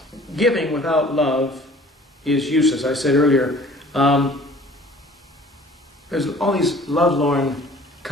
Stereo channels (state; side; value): normal; both; correlation 0.50